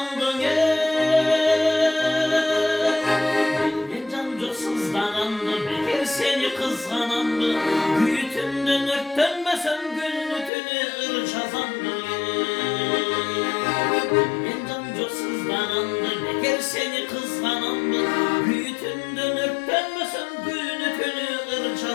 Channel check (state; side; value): drops out; right; at 10.5 s